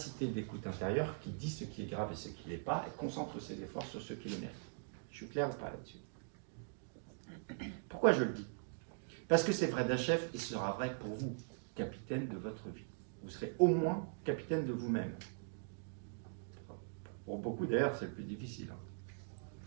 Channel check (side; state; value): left; silent; digital silence